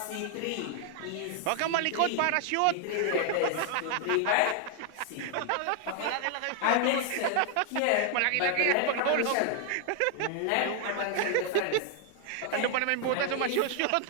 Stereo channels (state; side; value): different; both; correlation 0.00